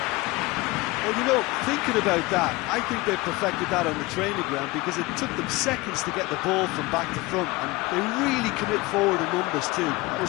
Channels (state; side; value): quieter; right; 21.6 dB